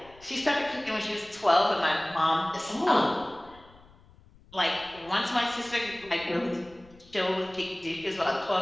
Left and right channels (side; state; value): left; noise; rumble, 25 dB below the sound